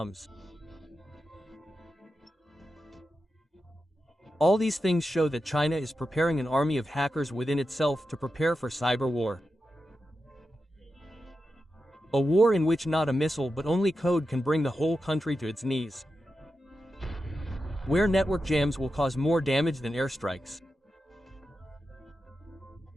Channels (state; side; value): normal; both; correlation 0.90